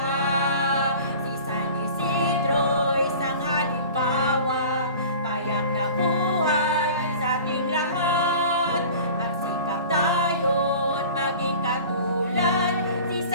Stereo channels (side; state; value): both; inverted; correlation -0.41